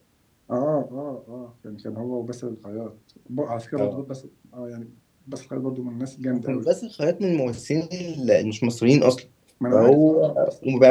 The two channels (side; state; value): both; identical; correlation 1.00